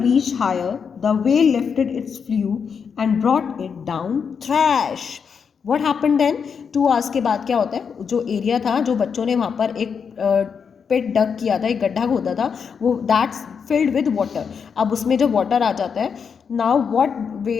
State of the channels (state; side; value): quieter; right; 6.4 dB